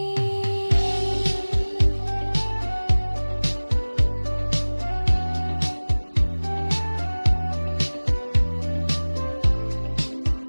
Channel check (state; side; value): inverted; both; correlation -1.00